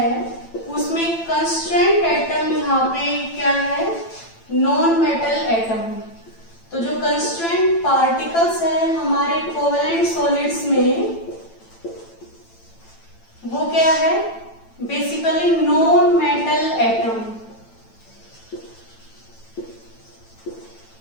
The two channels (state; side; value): late; right; 9.0 ms